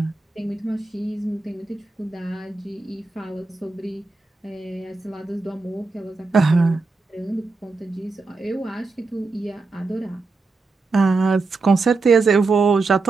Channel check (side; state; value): left; quieter; 3.8 dB